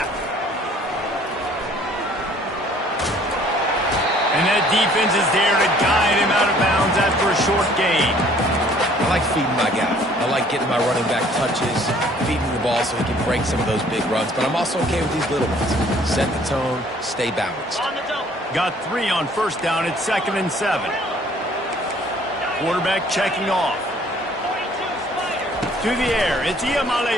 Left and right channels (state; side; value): normal; both; correlation 0.57